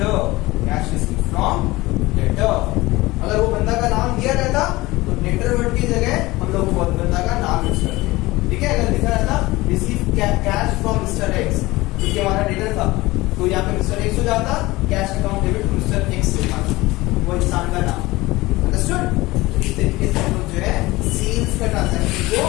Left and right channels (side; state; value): right; quieter; 20.1 dB